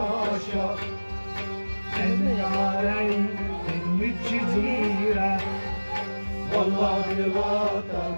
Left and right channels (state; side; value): inverted; both; correlation -1.00